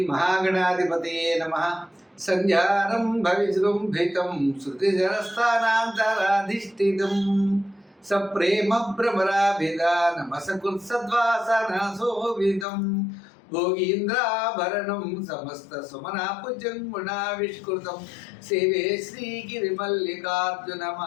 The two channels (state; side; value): drops out; right; at 12.7 s